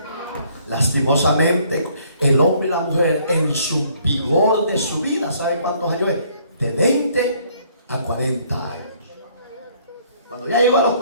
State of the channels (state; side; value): inverted; both; correlation -0.63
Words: Lastimosamente, el hombre y la mujer en su vigor de su vida, ¿sabe cuántos años es? De 20 a 40 años. Cuando ya llegó a los